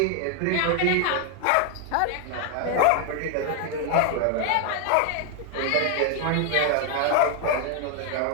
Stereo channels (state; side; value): different; both; correlation 0.01